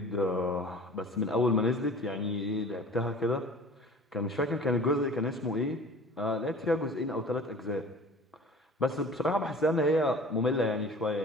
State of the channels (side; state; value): both; normal; correlation 0.44